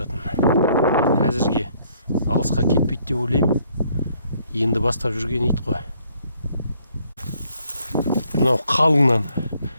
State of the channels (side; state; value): both; inverted; correlation -0.67